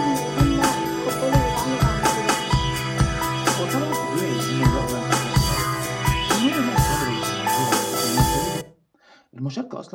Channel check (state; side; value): identical; both; correlation 1.00